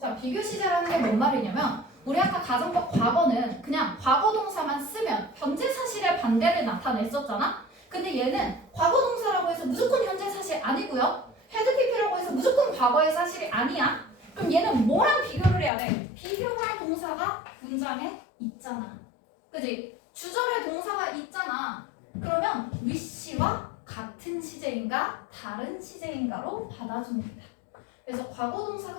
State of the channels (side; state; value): right; drops out; at 15.7 s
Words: 비교 시제라는 게 뭔 말이냐면 우리 아까 가정법 과거는 그냥 과거 동사만 쓰면 현재 사실의 반대를 나타냈었잖아. 근데 얘는 과거 동사라고 해서 무조건 현재 사실 아니고요. had PP라고 해서 무조건 과거의 사실이 아니야. 그럼 얘는 뭐랑 비교를 해야 돼? 비교할 동사가 문장에 있잖아. 그지? 주절에 동사가 있잖아. 그러면 wish와 같은 시제인가 다른 시제인가로 받아줍니다. 그래서 과거